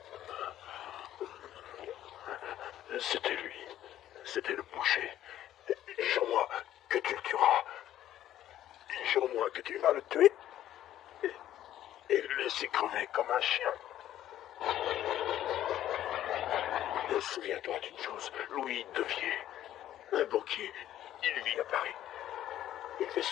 C'était lui. C'était le boucher. Jure-moi que tu le tueras. Jure-moi que tu vas le tuer. Et le laisser crever comme un chien. Souviens-toi d'une chose. Louis Devier, un banquier, il vit à Paris. Il fait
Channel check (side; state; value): right; quieter; 12.4 dB